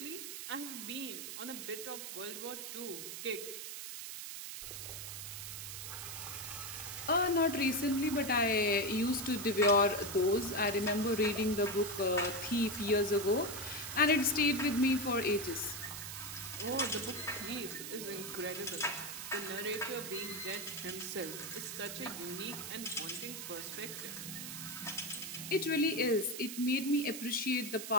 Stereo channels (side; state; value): right; noise; hiss, 7 dB below the sound